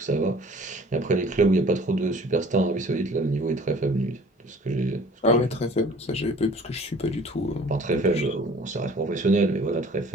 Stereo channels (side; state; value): both; normal; correlation 0.50